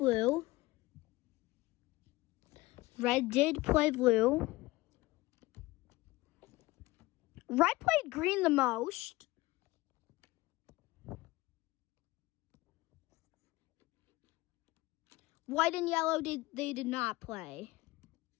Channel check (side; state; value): right; quieter; 20.0 dB